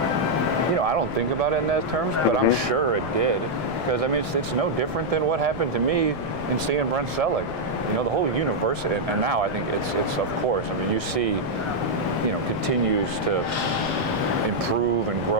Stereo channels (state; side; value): noise; right; rumble, 14 dB below the sound